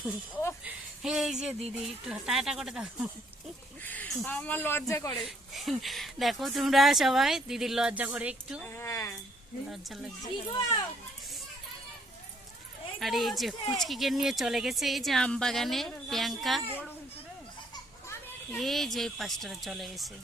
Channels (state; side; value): normal; both; correlation 0.66